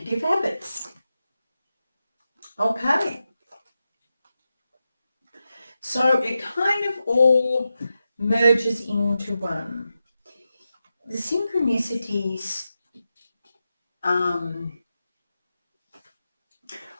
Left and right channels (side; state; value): both; inverted; correlation -0.90